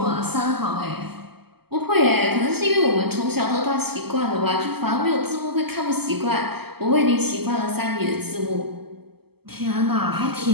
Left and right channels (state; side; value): late; left; 0.96 ms